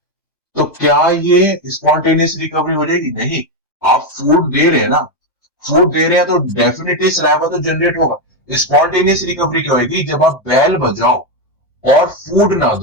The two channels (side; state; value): right; late; 1.2 ms